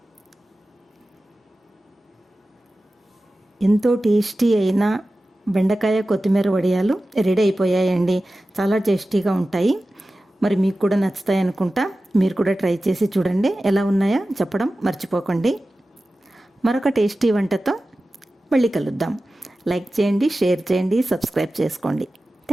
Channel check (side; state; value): both; normal; correlation 0.95